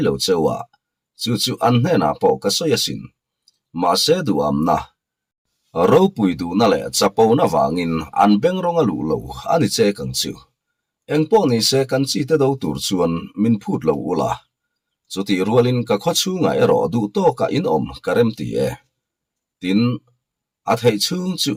lo chewa chu an hne na po ka soya sin ma se du am na ro pui du na le chapo na wangin an beng ronga lu lo ani che kang chu eng po ni se kan chi te do tur chuan min phut lo ula chuti rualin ka kho chu ngai ro du to ka in om karem ti e tin a thei chung chu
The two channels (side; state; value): both; identical; correlation 1.00